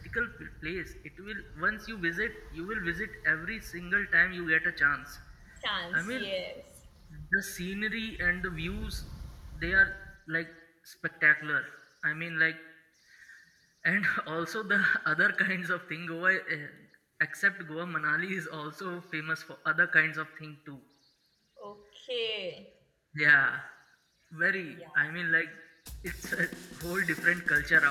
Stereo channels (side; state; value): both; identical; correlation 1.00